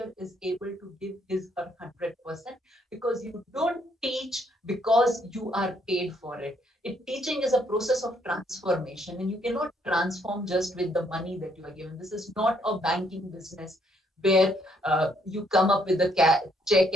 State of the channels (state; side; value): normal; both; correlation 0.70